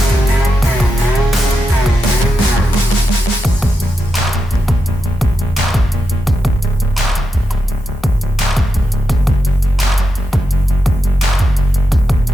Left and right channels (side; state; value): both; normal; correlation 0.87